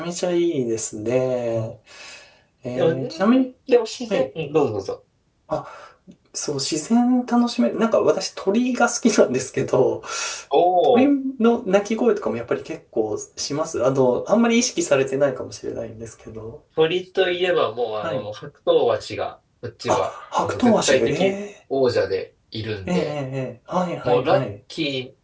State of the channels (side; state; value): both; identical; correlation 1.00